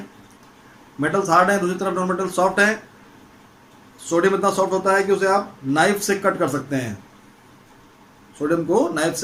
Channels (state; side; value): identical; both; correlation 1.00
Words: मेटल्स हार्ड हैं, दूसरी तरफ नॉन मेटल सॉफ्ट है। सोडियम इतना सॉफ्ट होता है कि उसे आप नाइफ से कट कर सकते हैं, सोडियम को नाइफ